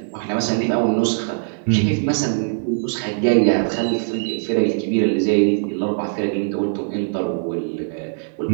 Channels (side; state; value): left; silent; digital silence